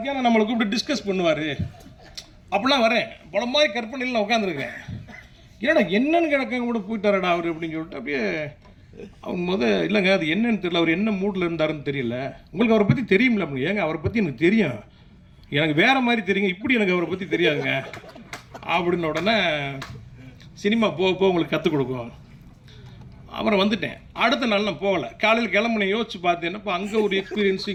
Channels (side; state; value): both; identical; correlation 1.00